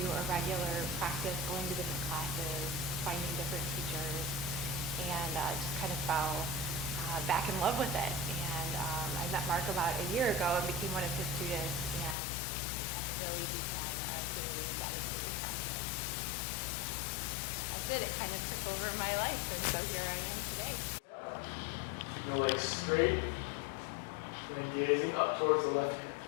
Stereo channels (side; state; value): right; drops out; at 12.2 s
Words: a regular practice, going to different classes, finding different teachers, and just kind of fell back in love with it. And I met Mark about a year ago and became one of his students, and really began a daily dedicated practice. And that's it. It kind of took over my life, and so here I am today. Your legs straight, and gazing up towards the left hand.